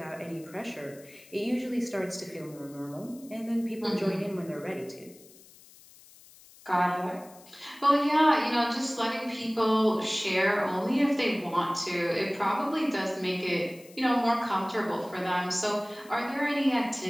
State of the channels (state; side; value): noise; left; hiss, 23 dB below the sound